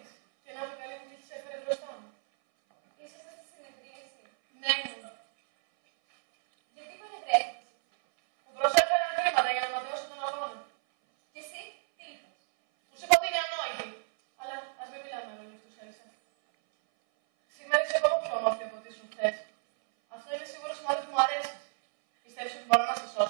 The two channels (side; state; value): left; silent; 57 dB below the other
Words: Και να με καλή μου τύχη σε έφερε μπροστά μου. Ήσασταν στη συνεδρίαση. Ναι, μου. Γιατί παρευρέθηκες? Μου προσέφεραν χρήματα για να ματαιώσω τον αγώνα. Και εσύ, τι είπες? Τους είπα ότι είναι ανόητη. Αλλά ας μην μιλάμε λόγια αυτούς, Έλισσα. Σήμερα είσαι ακόμα πιο όμορφη από ό,τι ήσουν χθες. Αυτό είναι σίγουρο σημάδι που μου αρέσει. Πιστεύεις ότι μπορώ να σε